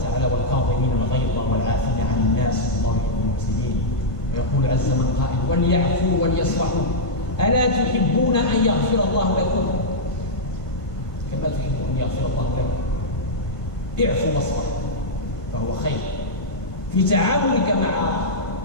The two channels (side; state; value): right; late; 1.5 ms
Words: والكاظمين الغيظ والعافين عن الناس والله يحب المحسنين. ويقول عز من قائل: وليعفوا وليصفحوا ألا تحبون أن يغفر الله لكم كما تحبون أن يغفر الله لكم. اعفوا واصفحوا فهو خير. في تعاملك مع